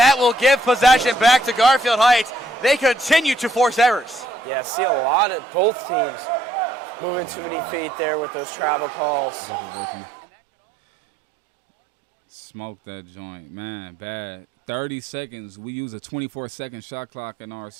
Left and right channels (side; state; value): left; drops out; at 5.2 s